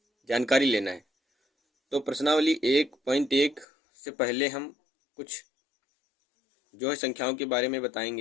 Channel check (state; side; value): drops out; right; at 3.7 s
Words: जानकारी लेना है। तो प्रश्नावली 1.1 से पहले हम कुछ जो है संख्याओं के बारे में